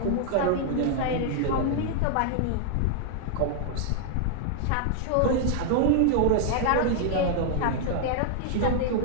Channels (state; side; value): different; both; correlation -0.01